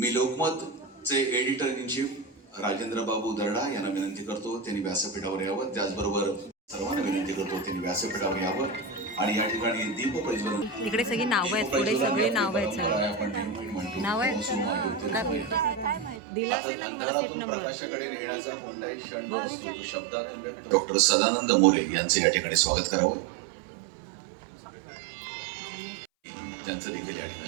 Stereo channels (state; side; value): drops out; left; at 16.2 s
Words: लोकमतचे एडिटर इन चीफ राजेंद्र बाबू दर्डा यांना विनंती करतो त्यांनी व्यासपीठावर यावं. त्याचबरोबर सर्वांना विनंती करतो त्यांनी व्यासपीठावर यावं आणि या ठिकाणी दीप प्रज्वलन. इकडे सगळी नावं आहेत, पुढे सगळे नावं आहेत, सगळे आपण नेहमी म्हणतो नाव आहेत. दिला असेल ना तुम्हाला सीट नंबर. प्रकाशाकडे नेण्याचा कोणताही क्षण नसतो, तो शब्दातून व्यक्त. डॉक्टर सदानंद मोरे यांचे या ठिकाणी स्वागत करावं, त्यांचं देखील या